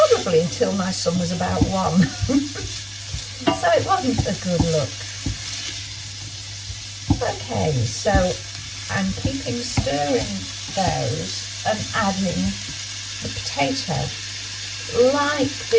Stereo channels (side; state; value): both; identical; correlation 1.00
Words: until my son was about 1. So it wasn't a good look. Okay, so I'm keeping stirring those and adding the potato. Like